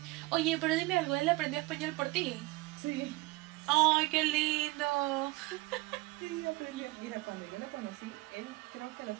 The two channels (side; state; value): left; quieter; 22.1 dB